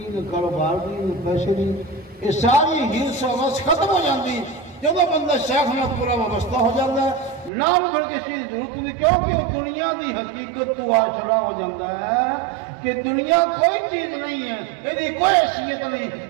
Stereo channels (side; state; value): left; drops out; at 7.5 s